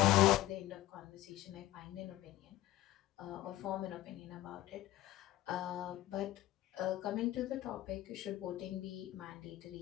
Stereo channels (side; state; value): right; quieter; 15.5 dB